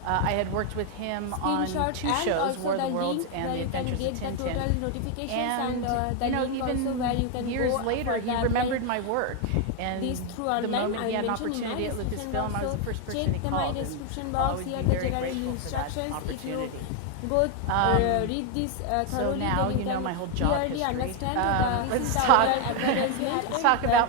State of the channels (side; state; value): both; different; correlation 0.01